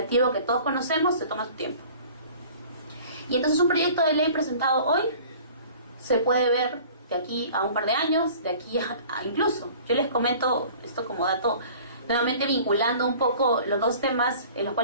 que todos conocemos se toma su tiempo. Y entonces un proyecto de ley presentado hoy se puede ver de aquí a un par de años, de aquí a incluso. Yo les comento esto como dato nuevamente vinculando un poco los dos temas en los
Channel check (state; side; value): inverted; both; correlation -0.47